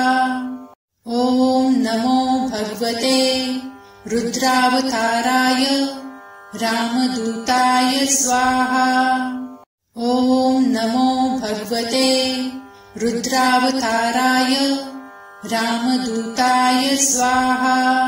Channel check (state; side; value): identical; both; correlation 1.00